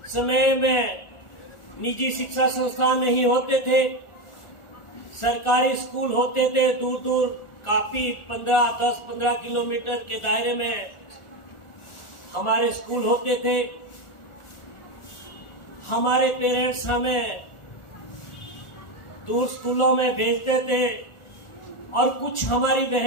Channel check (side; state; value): right; late; 1.4 ms